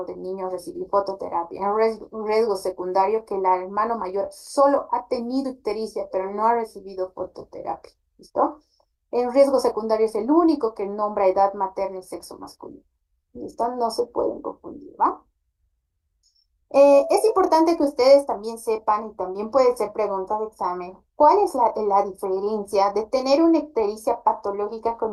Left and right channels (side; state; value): both; identical; correlation 1.00